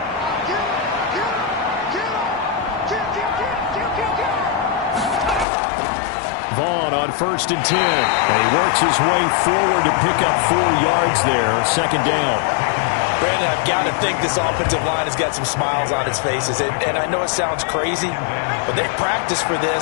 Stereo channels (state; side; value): drops out; right; at 5.5 s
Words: Vaughn on 1st and 10. And he works his way forward to pick up 4 yards there. 2nd down. Brandon, I've got to think this offensive line has got some smiles on its faces. And I know it sounds crazy, but they practiced for